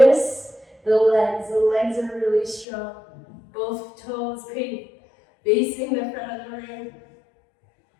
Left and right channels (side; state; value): right; drops out; at 2.7 s